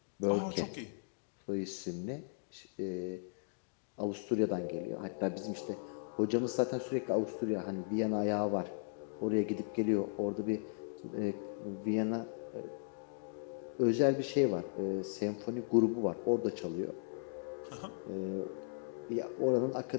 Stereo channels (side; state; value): right; silent; digital silence